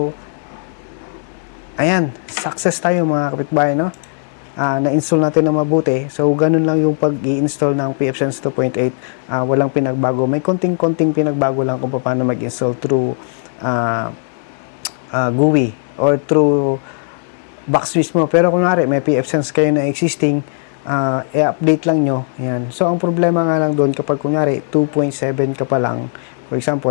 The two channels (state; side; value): silent; right; 61 dB below the other